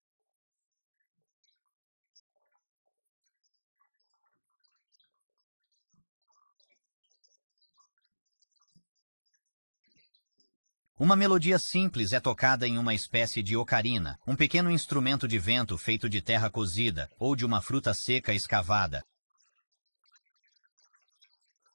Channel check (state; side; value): inverted; both; correlation -1.00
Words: Uma melodia simples é tocada em uma espécie de ocarina, um pequeno instrumento de vento feito de terra cozida ou de uma fruta seca escavada. Ocarina, a little wind instrument made out of